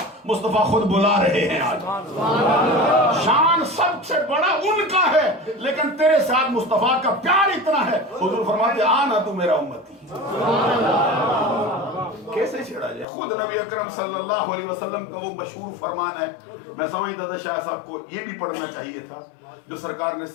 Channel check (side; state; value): right; drops out; at 13.1 s